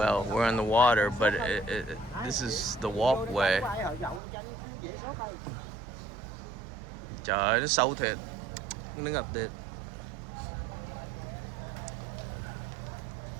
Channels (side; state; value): left; drops out; at 4.2 s